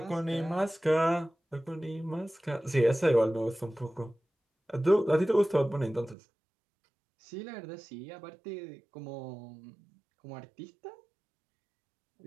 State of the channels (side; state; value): left; drops out; at 6.2 s